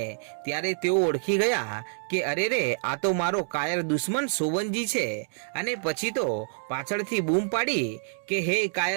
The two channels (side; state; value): left; silent; digital silence